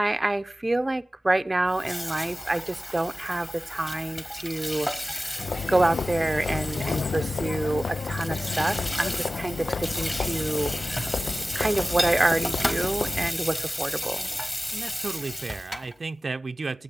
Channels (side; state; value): both; normal; correlation 0.96